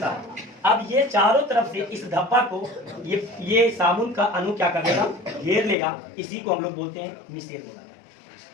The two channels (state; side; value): drops out; right; at 5.8 s